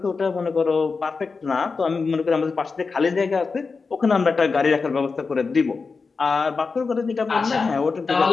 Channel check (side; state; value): right; quieter; 4.6 dB